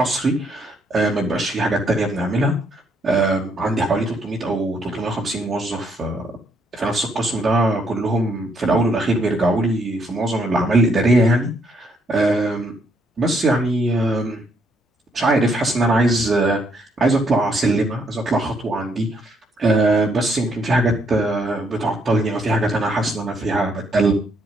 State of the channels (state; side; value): normal; both; correlation 0.72